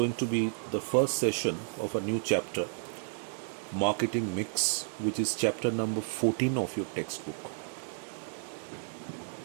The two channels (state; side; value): silent; left; digital silence